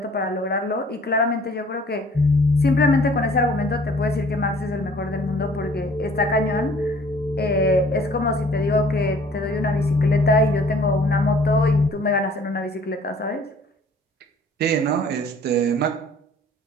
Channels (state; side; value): normal; both; correlation 0.54